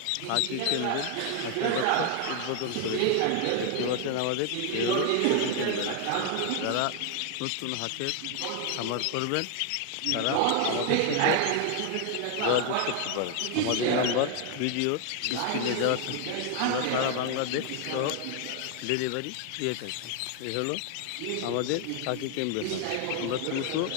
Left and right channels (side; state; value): both; different; correlation 0.00